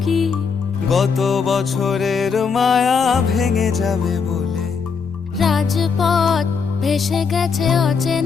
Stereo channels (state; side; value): quieter; right; 5.7 dB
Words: গত বছরের মায়া ভেঙে যাবে বলে। রাজপথ ভেসে গেছে